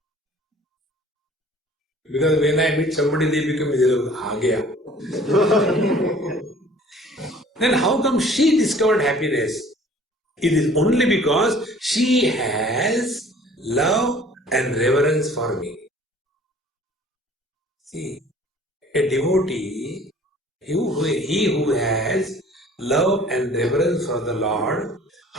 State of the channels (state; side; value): normal; both; correlation 0.51